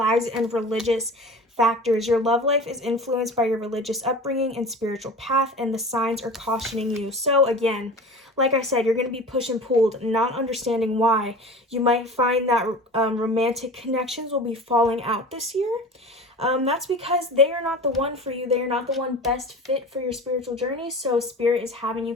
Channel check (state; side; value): normal; both; correlation 0.36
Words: and religious factors. Your love life is influenced by your religious upbringing and spiritual path, and the signs are cautioning you. So again, like I said, you're going to be pushed and pulled, not understanding why. You might find that romantic connections will be falling out this year. That's because they are not the one for you. They are not the one best fit for your spiritual journey. So Spirit is having you